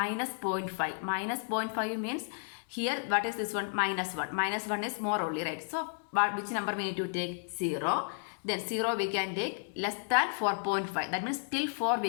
0.5. Minus 0.5 means here what is this one? Minus 1. Minus 1 is more only, right? So which number we need to take? 0. Then 0 we can take less than 4.5. That means till 4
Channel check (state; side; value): silent; right; digital silence